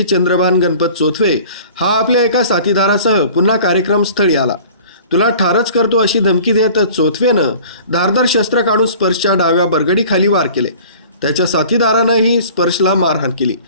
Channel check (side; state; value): both; inverted; correlation -0.46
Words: चंद्रभान गणपत चोथवे हा आपल्या एका साथीदारासह पुन्हा कार्यक्रम स्थळी आला. तुला ठारच करतो अशी धमकी देत चोथवेनं धारदार शस्त्र काढून स्पर्शच्या डाव्या बरगडीखाली वार केले. त्याच्या साथीदारानंही स्पर्शला मारहाण केली.